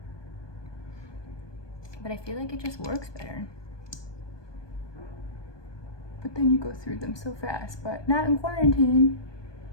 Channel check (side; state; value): right; late; 1.2 ms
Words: But I feel like it just works better. But then you go through them so fast, but not in quarantine.